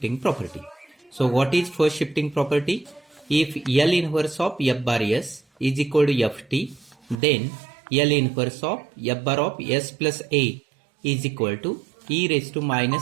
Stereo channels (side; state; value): left; drops out; at 7.2 s